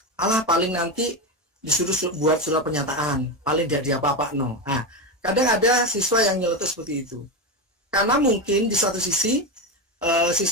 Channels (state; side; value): normal; both; correlation 0.15